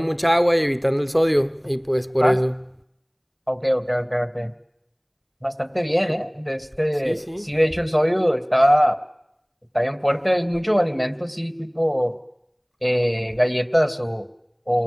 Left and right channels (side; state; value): both; identical; correlation 1.00